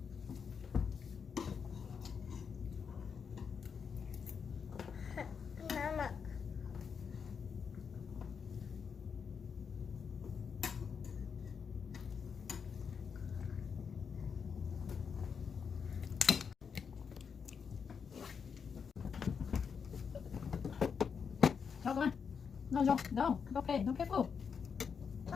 Mama. Come on. No. Okay, don't get full.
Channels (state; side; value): quieter; right; 6.4 dB